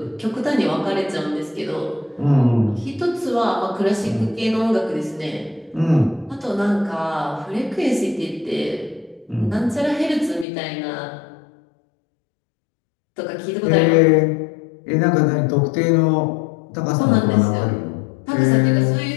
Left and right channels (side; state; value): right; drops out; at 10.5 s